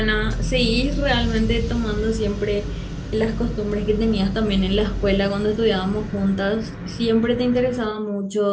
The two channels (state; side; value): identical; both; correlation 1.00